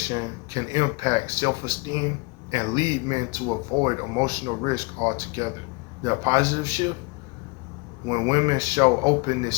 can impact self-esteem and lead men to avoid emotional risk altogether. The positive shift: when women show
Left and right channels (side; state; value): right; quieter; 29.0 dB